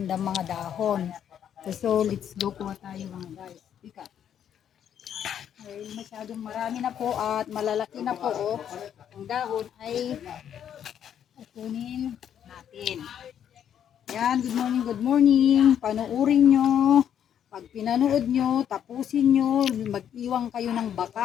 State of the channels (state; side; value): quieter; right; 9.3 dB